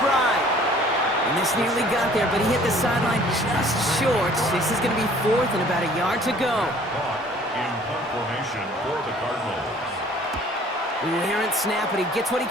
And this nearly got there, but he hit the sideline just short. This is going to be 4th and about a yard to go. In punt formation for the Cardinals. An errant snap, but he gets what he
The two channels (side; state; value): both; normal; correlation 0.54